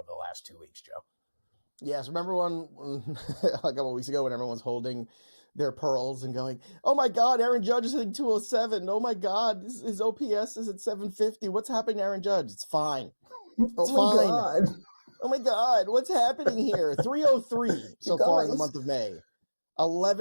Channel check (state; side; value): inverted; both; correlation -1.00